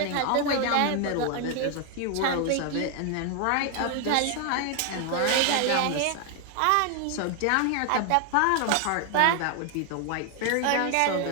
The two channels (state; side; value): different; both; correlation 0.00